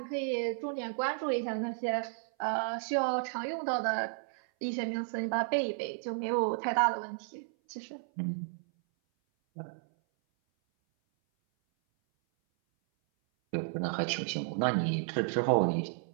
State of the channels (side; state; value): left; silent; 56 dB below the other